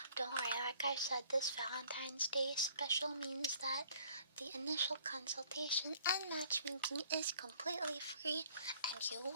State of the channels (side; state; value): both; inverted; correlation -0.57